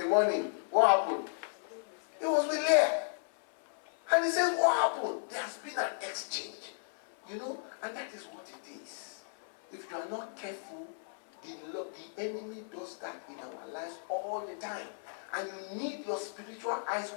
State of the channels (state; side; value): silent; right; 55 dB below the other